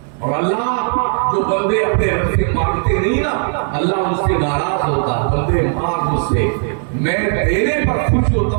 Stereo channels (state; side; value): silent; left; 56 dB below the other